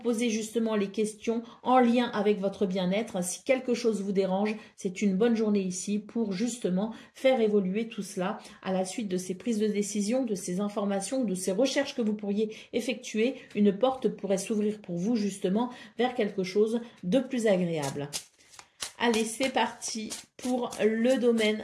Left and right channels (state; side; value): identical; both; correlation 1.00